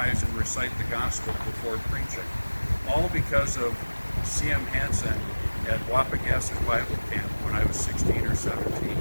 and recite the gospel before preaching, all because of C.M. Hansen at Wapagasset Bible Camp when I was 16 or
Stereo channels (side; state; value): both; inverted; correlation -1.00